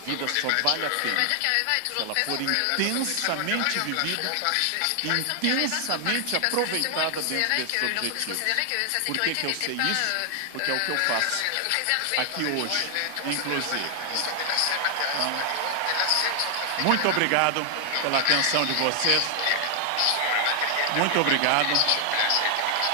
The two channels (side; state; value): both; different; correlation 0.00